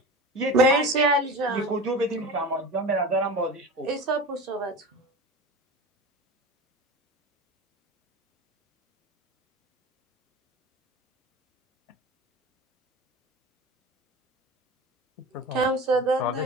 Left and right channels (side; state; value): both; normal; correlation 0.32